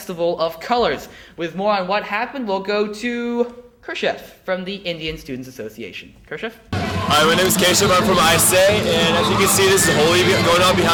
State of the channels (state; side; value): identical; both; correlation 1.00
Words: of Colors. With more on what happened, we'll go to Kershev from the Indian Students Association. Kershev? Hi, my name is Keshav. I'm from ISA, and as you can see, this is Holi going on